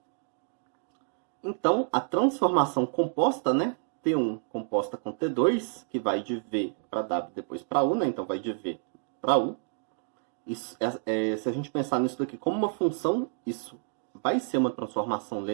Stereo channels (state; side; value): silent; left; 58 dB below the other